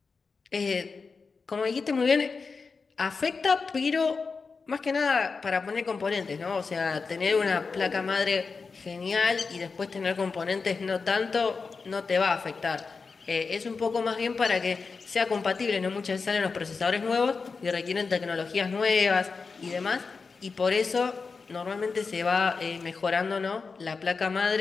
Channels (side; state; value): right; quieter; 4.7 dB